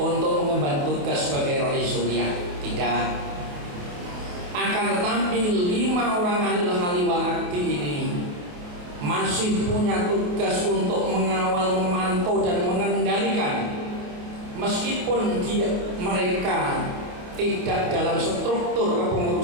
mengemban tugas sebagai rais suriah. Tidak. Akan tetapi 5 orang ahlul hali wal akdi ini masih punya tugas untuk mengawal, memantau dan mengendalikan, meskipun mereka tidak dalam struktur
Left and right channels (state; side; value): late; left; 28 ms